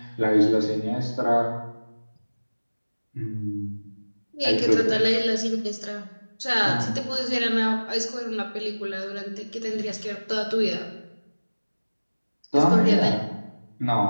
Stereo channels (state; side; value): inverted; both; correlation -1.00